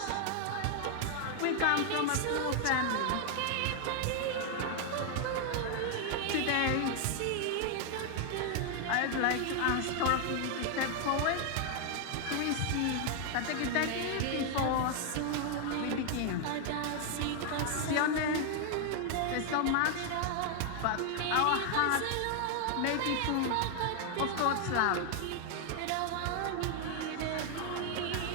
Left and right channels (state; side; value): different; both; correlation 0.00